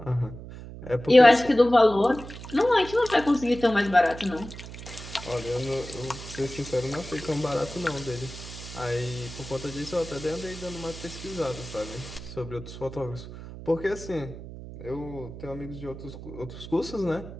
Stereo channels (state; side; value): noise; right; hum, 12 dB below the sound